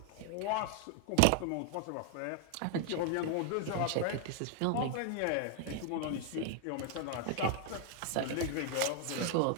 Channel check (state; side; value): different; both; correlation 0.00